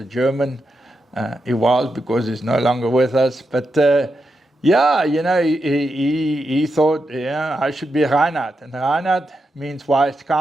German. He was, because he's no longer with us. But he thought, I should be Reinhard. And Reinhard means wise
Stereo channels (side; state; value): both; normal; correlation 0.86